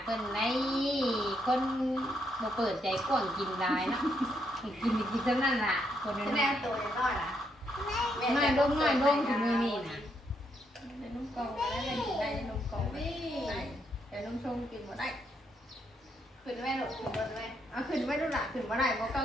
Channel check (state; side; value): normal; both; correlation 0.77